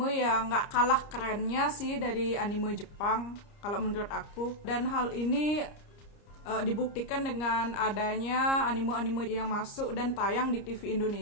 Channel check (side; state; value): right; late; 30 ms